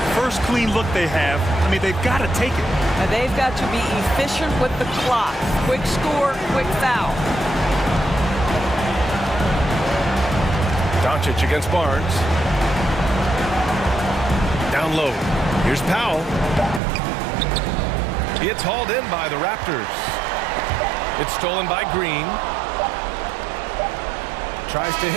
First clean look they have. I mean, they've got to take it. And they've got to be efficient with the clock. Quick score, quick foul. Doncic against Barnes. Down low. Here's Powell. It's hauled in by the Raptors. It's stolen by Green. Tries to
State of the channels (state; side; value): drops out; left; at 16.8 s